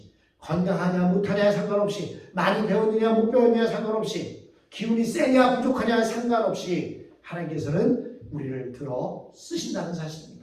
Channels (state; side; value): identical; both; correlation 1.00